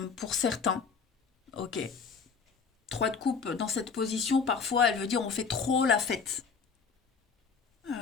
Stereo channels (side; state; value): right; quieter; 5.6 dB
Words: pour certains. Ok. 3 de coupe dans cette position, parfois elle veut dire on fait trop la fête.